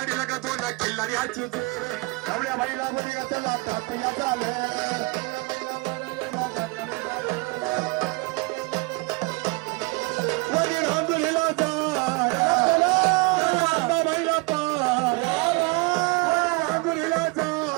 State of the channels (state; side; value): quieter; left; 27.5 dB